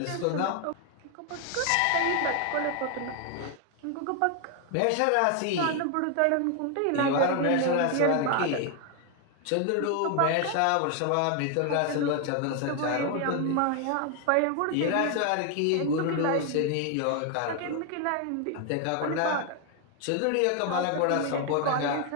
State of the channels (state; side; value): different; both; correlation 0.00